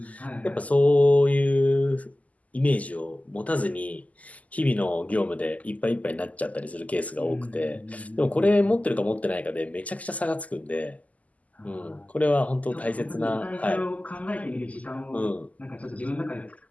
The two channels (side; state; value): right; late; 0.073 ms